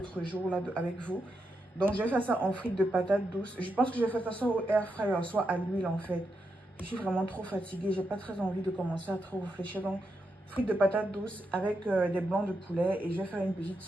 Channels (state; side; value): normal; both; correlation 0.84